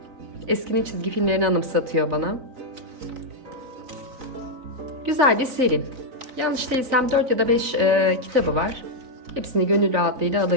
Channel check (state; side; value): late; left; 4.0 ms